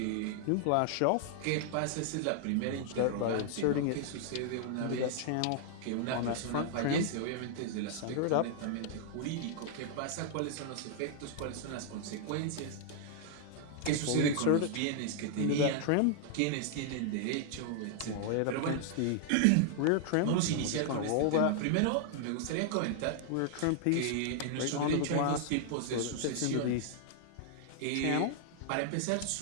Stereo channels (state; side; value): different; both; correlation 0.00